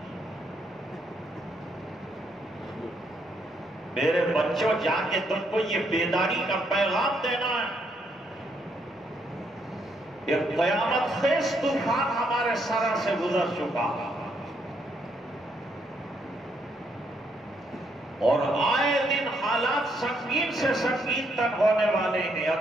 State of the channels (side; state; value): both; normal; correlation 0.74